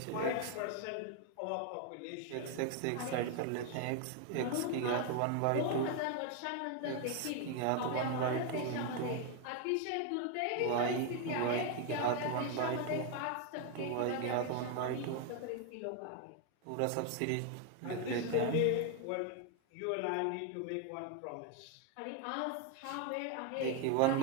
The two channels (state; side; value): different; both; correlation 0.01